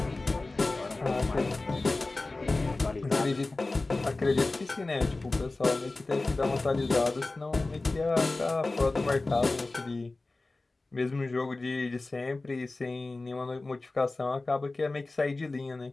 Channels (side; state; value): right; quieter; 3.2 dB